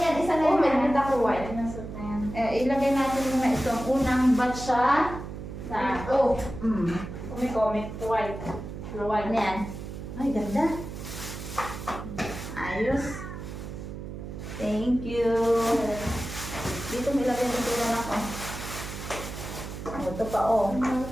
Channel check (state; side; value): noise; right; hum, 9 dB below the sound